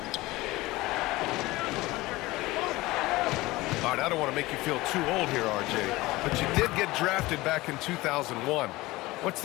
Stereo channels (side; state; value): right; quieter; 19.8 dB